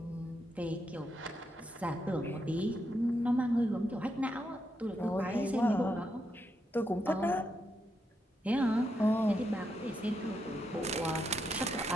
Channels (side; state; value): both; normal; correlation 0.82